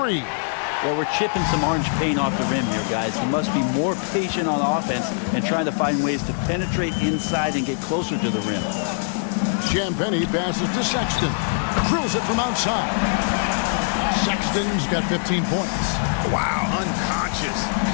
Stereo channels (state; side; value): silent; right; 60 dB below the other